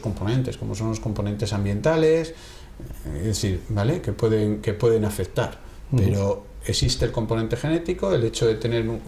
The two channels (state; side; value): identical; both; correlation 1.00